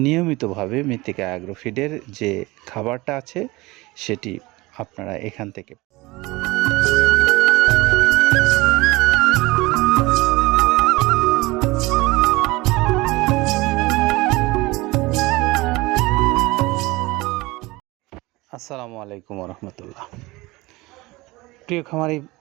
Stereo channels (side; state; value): left; quieter; 21.6 dB